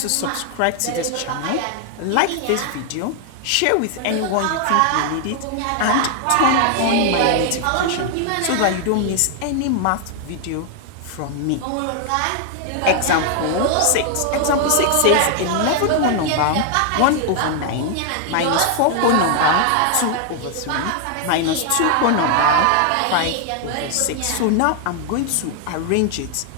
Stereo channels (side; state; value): both; different; correlation 0.00